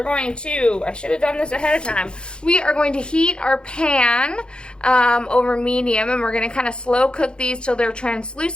going to, I should have done this ahead of time. We are going to heat our pan over medium, and we're going to kind of slow cook these till they're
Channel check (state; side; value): late; right; 0.052 ms